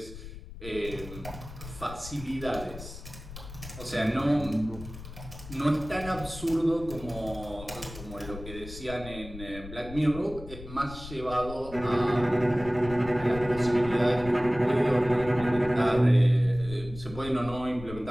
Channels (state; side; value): noise; left; rumble, 13 dB below the sound